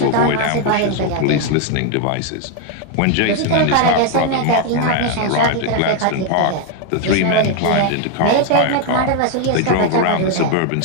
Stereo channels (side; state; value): both; different; correlation 0.01